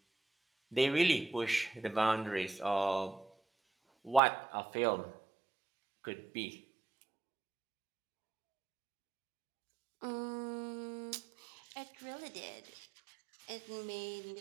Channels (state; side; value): drops out; left; at 4.2 s